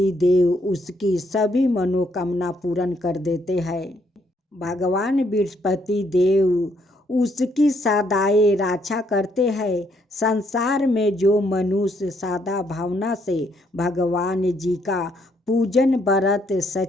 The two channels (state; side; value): normal; both; correlation 0.72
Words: देव उसकी सभी मनोकामना पूर्ण कर देते हैं। भगवान बृहस्पति देव उसकी सदाए रक्षा करते हैं। संसार में जो मनुष्य सादा भावना से भगवान जी का पूजन व्रत